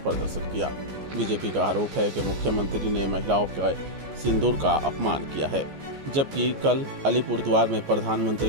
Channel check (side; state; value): left; late; 14 ms